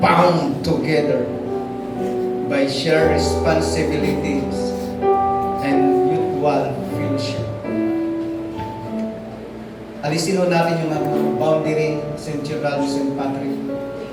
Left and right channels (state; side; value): identical; both; correlation 1.00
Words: together by shared responsibilities and mutual fellowship. Alisin ho natin yung boundary, St. Gerald, St. Patrick.